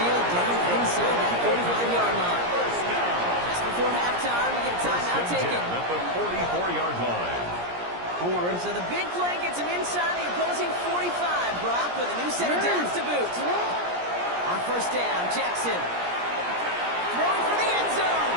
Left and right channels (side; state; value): left; late; 17 ms